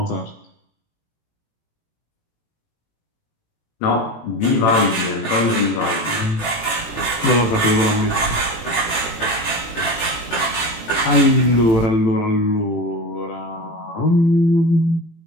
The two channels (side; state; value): right; late; 18 ms